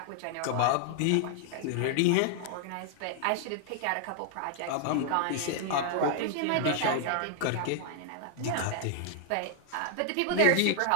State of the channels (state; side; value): different; both; correlation 0.00